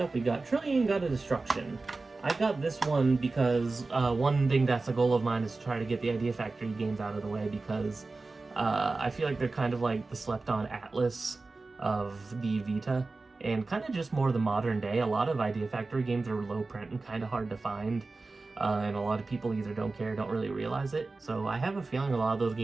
we got Trillion God of Destruction. I got this one because one thing that's a goal of mine is to try to get the Idea Factory games out of the way, because I feel like they're kind of like the slept-on Atlas of the Vita, and kind of just more the modern day. A lot of Idea Factory games are low print and kind of hard to find, and a lot of people either don't care or don't really realize it. So I have a feeling a lot of those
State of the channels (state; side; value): quieter; left; 3.6 dB